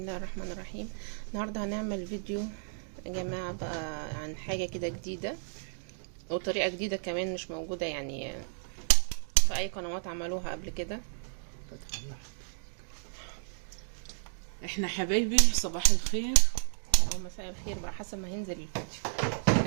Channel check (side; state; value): left; silent; digital silence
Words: الرحمن الرحيم. النهاردة هنعمل فيديو يا جماعة بقى عن حاجة كده جديدة وطريقة جديدة كمان مش موجودة يعني في اي قنوات عملوها قبل كده. احنا حبايبي صباح الخير او مساء الخير بقى حسب ما هينزل